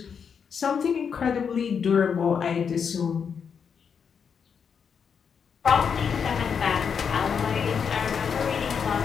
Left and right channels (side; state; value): right; quieter; 6.7 dB